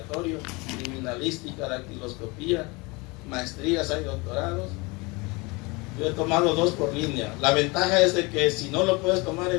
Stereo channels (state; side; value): quieter; right; 26.3 dB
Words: criminalística, dactiloscopía, maestrías, hay doctorados. Yo he tomado 2 por línea. La ventaja es de que si no lo puedes tomar